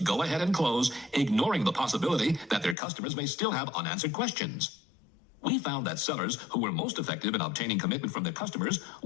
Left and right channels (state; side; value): drops out; right; at 2.8 s